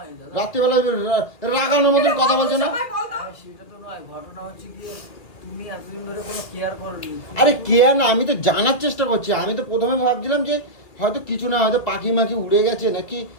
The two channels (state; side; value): late; right; 2.4 ms